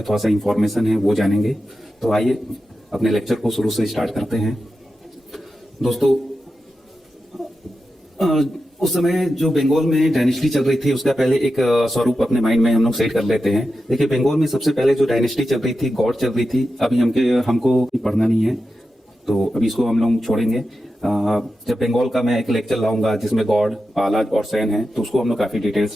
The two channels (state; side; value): normal; both; correlation 0.90